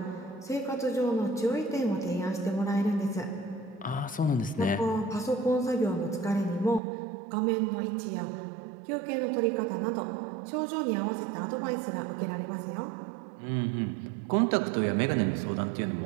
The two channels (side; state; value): left; drops out; at 6.8 s